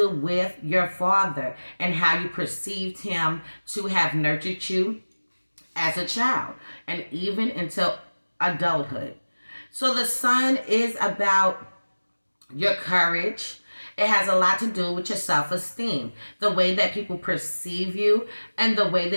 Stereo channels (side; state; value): both; inverted; correlation -1.00